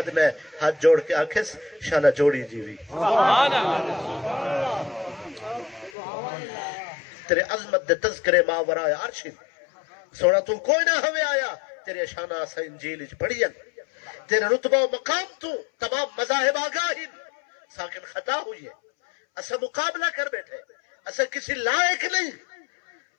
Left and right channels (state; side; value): drops out; right; at 5.9 s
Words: ہاتھ جوڑ کے آکھس شالا جوڑی جیوی، تیرے عظمت دے تذکرے ماورائے عرش، سونا تو کوئی نہ ہوئے آیا، تیرے شانہ اسا انجیل اچ پڑھین، تیرے رتبہ و مقام تو تمام مذاہب آگاہن، ساکن خطا ہوئی ہے، اسا مقابلہ کر بیٹھے، اسا کسی لائق نہیں،